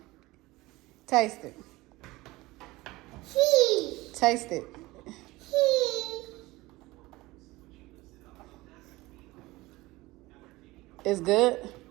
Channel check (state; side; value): quieter; left; 20.2 dB